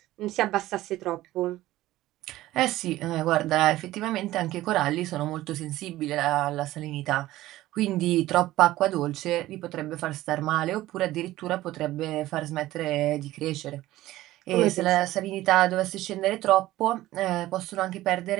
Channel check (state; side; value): quieter; left; 16.0 dB